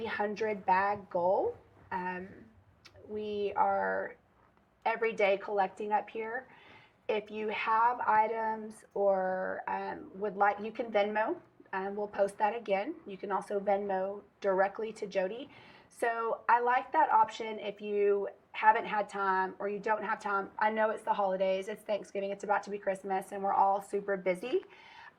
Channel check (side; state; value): both; identical; correlation 1.00